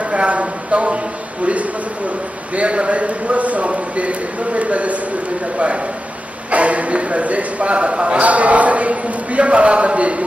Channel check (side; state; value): both; normal; correlation 0.92